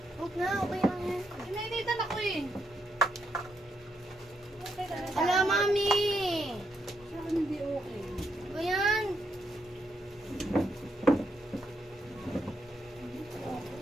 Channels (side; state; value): both; normal; correlation 0.78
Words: Huwag na, okay lang yan. Inainitan ako eh. Okay ka na. Ala, mami! Sa akin hindi okay. Ba yan?